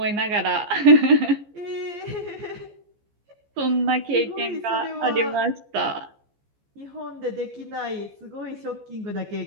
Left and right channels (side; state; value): left; late; 14 ms